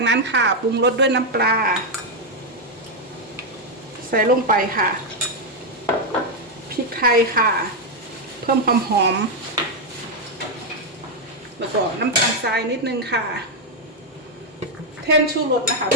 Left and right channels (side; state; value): both; normal; correlation 0.02